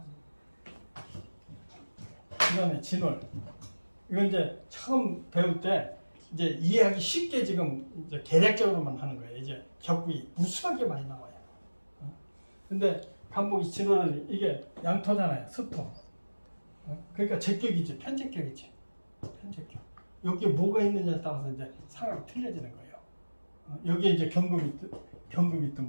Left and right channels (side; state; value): both; inverted; correlation -1.00